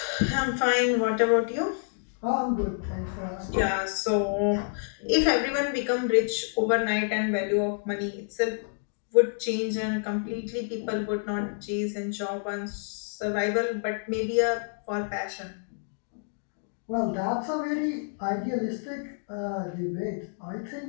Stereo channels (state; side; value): silent; right; digital silence